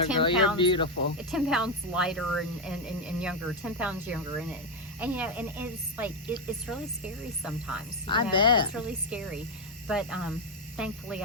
10 girl. You're pounds- beautiful. 10 pounds lighter and younger, 10 pounds younger, and it's like it's really scary sometimes. I bet. It's really scary, but thankfully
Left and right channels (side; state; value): both; normal; correlation 0.06